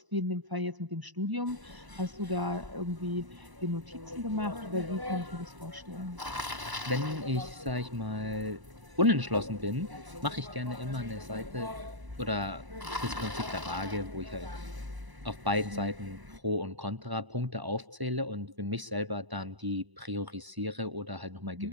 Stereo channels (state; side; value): late; left; 1.0 ms